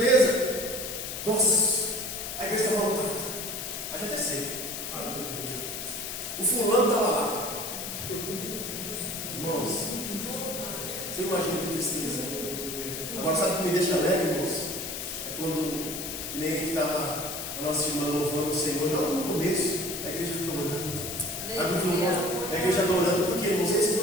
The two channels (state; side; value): noise; left; hiss, 6 dB below the sound